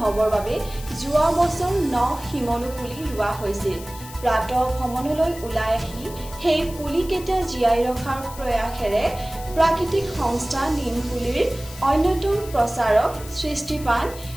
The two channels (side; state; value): left; noise; hiss, 16 dB below the sound